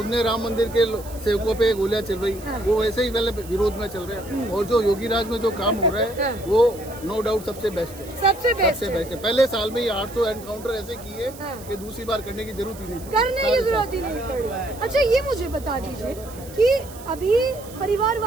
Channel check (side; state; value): right; noise; hiss, 19 dB below the sound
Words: ने राम मंदिर के सेवकों पे गोलियां चल रही, वो वैसे ही पहले विरोध में चल रहे हैं। और जो योगी राज में जो काम हो रहा है वो नो डाउट सबसे बेस्ट है, सबसे बेस्ट है। पहले साल में ही 800 एनकाउंटर ऐसे किए कि दूसरी बार करने की जरूरत ही नहीं पड़ी। अच्छा, ये मुझे बता दीजिए, कि अभी